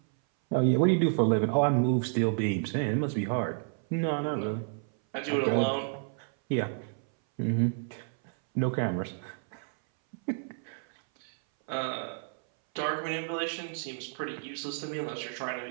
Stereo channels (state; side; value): silent; left; 58 dB below the other